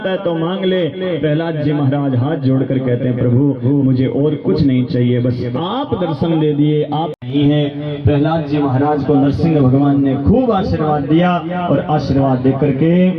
है तो मांग ले। प्रहलाद जी महाराज हाथ जोड़कर कहते हैं प्रभु मुझे और कुछ नहीं चाहिए, बस आप दर्शन दे दिए, आप नहीं है। प्रहलाद जी महाराज को नरसिंह भगवान ने खूब आशीर्वाद दिया, और आशीर्वाद देकर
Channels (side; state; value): both; identical; correlation 1.00